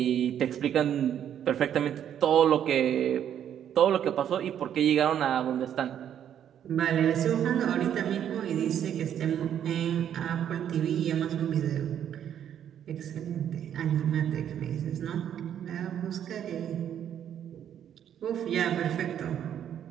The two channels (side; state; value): left; quieter; 9.7 dB